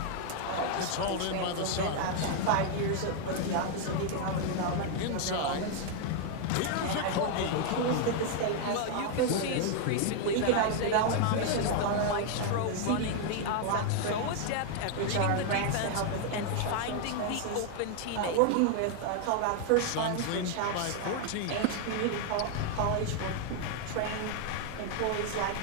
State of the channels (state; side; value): different; both; correlation 0.00